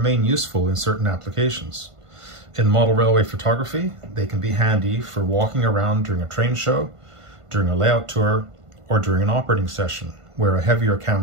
useful in certain applications. In model railway photography, they can be handy for walking around during a train show, during a layout tour, or during an operating session, where a heavier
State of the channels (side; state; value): left; late; 1.5 ms